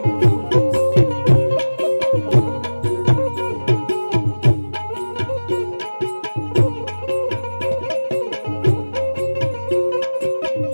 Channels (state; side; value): inverted; both; correlation -1.00